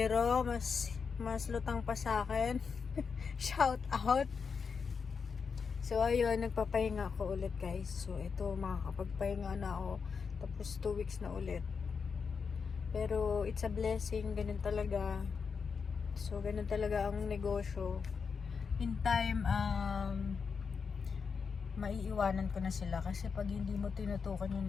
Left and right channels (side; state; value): right; quieter; 5.7 dB